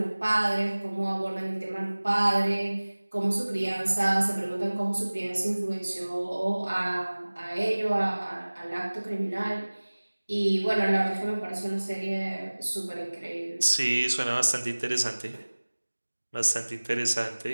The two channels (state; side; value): inverted; both; correlation -1.00